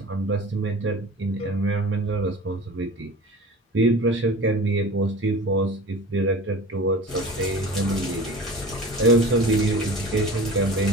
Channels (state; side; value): normal; both; correlation 0.38